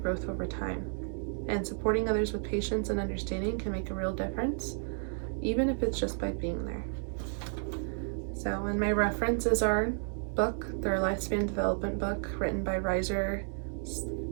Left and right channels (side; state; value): left; silent; 56 dB below the other